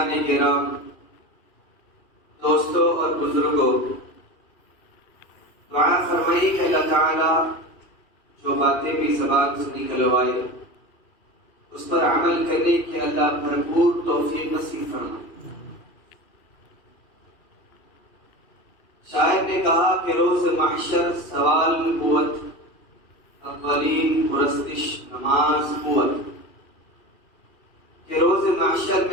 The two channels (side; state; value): right; late; 2.8 ms